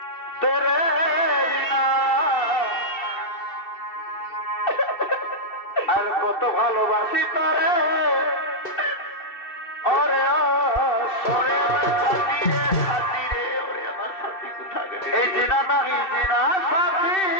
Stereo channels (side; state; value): right; late; 2.7 ms